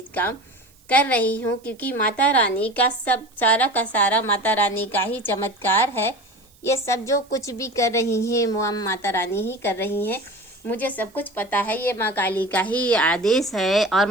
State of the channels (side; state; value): right; noise; hiss, 30 dB below the sound